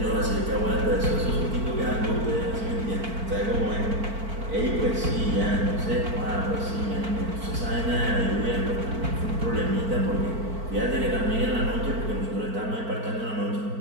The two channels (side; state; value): left; late; 4.5 ms